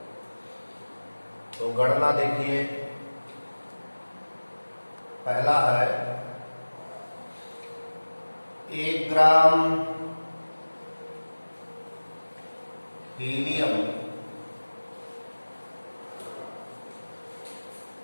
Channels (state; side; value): inverted; both; correlation -1.00